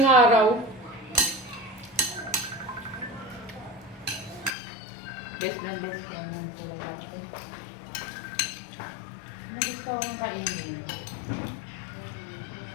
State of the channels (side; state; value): right; drops out; at 4.5 s